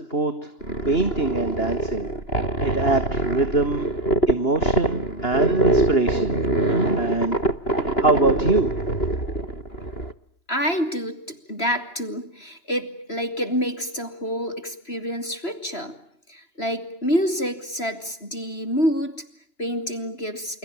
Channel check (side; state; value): right; late; 3.0 ms